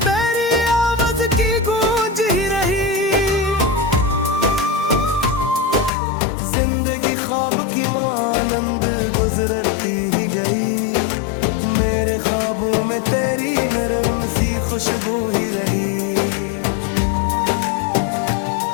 तेरी आवाज की गूंज ही रही। जिंदगी ख्वाब की मानंद गुजरती ही गई। मेरे ख्वाबों में तेरी नरम सी खुशबू ही रही।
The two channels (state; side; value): drops out; right; at 5.9 s